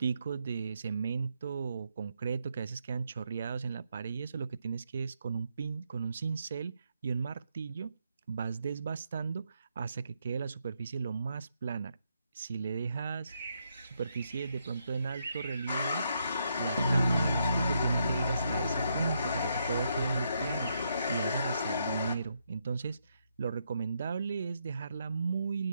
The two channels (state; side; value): inverted; both; correlation -0.78